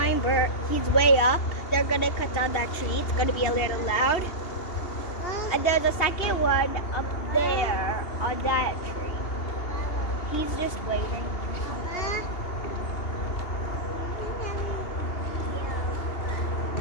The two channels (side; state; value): right; late; 2.8 ms